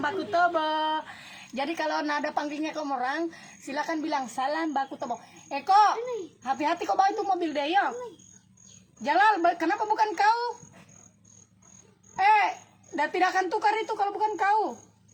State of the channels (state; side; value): identical; both; correlation 1.00